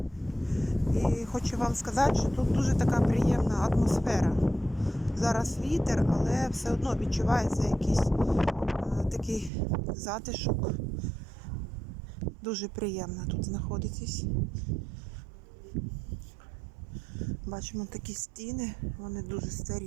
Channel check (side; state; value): left; drops out; at 9.5 s